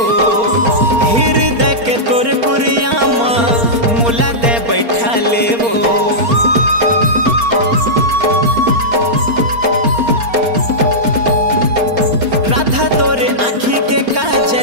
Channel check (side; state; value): left; late; 4.3 ms